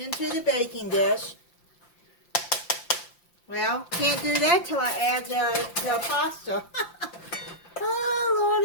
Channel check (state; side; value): late; right; 5.8 ms